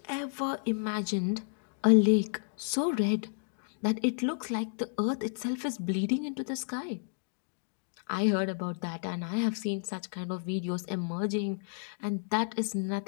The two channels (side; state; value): right; silent; digital silence